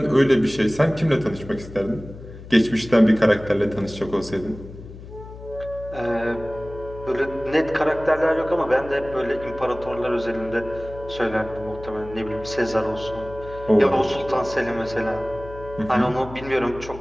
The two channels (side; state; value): left; noise; hum, 15 dB below the sound